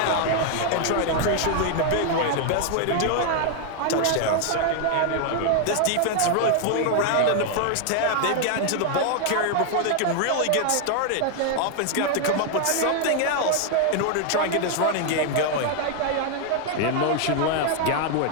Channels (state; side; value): different; both; correlation 0.00